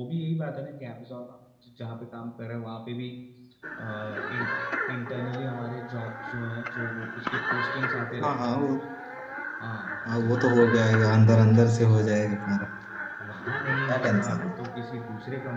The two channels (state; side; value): identical; both; correlation 1.00